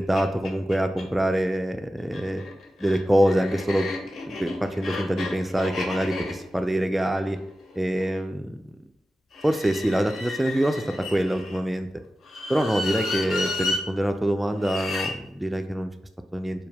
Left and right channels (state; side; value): normal; both; correlation 0.93